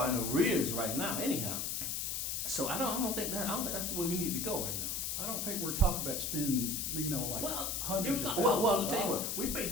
in arrears right now. Anyhow, so I don't think that's the way we need to go right now. I don't think we're talking about spending, hundreds of I'll tell you what, we pay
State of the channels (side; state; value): left; noise; hiss, 1 dB below the sound